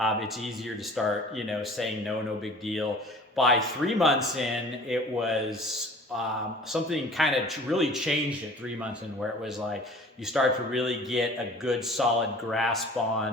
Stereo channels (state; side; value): normal; both; correlation 0.46